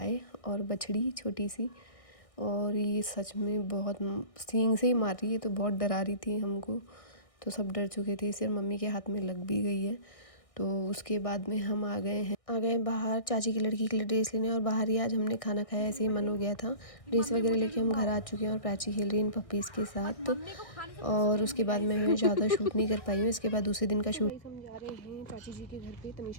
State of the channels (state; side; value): late; right; 1.6 ms